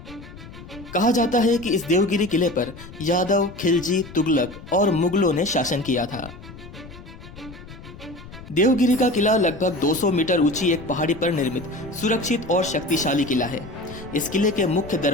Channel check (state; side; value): noise; left; rumble, 16 dB below the sound